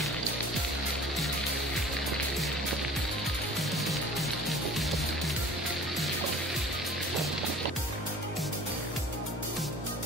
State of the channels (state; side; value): normal; both; correlation 0.45